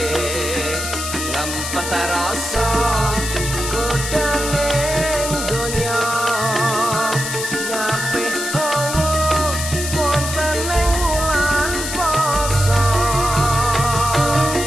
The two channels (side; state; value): left; noise; hiss, 5 dB below the sound